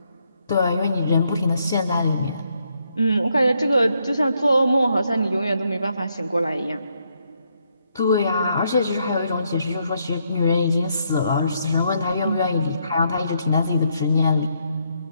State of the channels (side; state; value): both; inverted; correlation -0.76